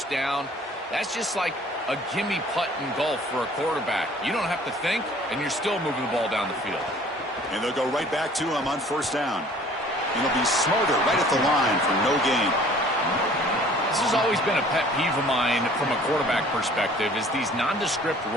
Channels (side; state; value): both; normal; correlation 0.52